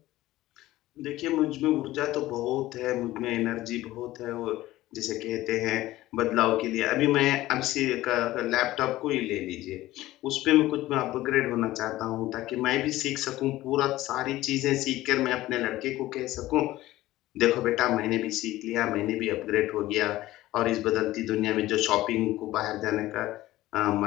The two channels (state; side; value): quieter; right; 16.4 dB